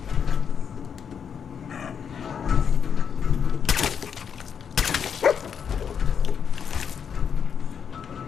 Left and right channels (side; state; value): right; quieter; 7.3 dB